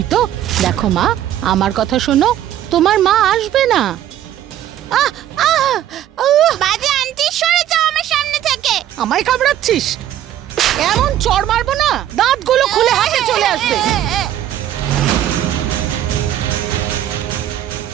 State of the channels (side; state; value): left; quieter; 11.7 dB